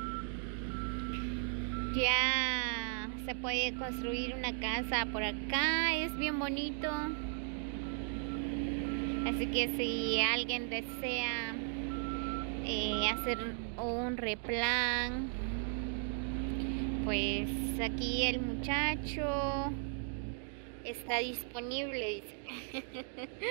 Ya se puede construir una casa por acá. Es bien bonito. Así que si alguien desea hacer un replan, pues aquí el muchacho está disponible, dice.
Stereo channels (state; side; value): silent; left; 54 dB below the other